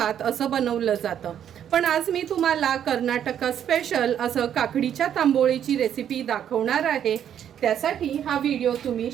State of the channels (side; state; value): left; quieter; 9.6 dB